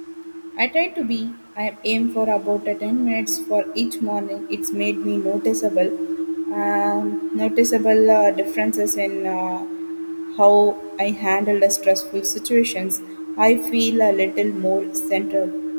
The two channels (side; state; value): both; inverted; correlation -1.00